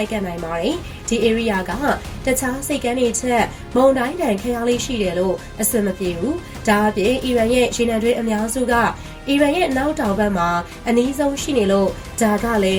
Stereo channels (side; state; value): both; identical; correlation 1.00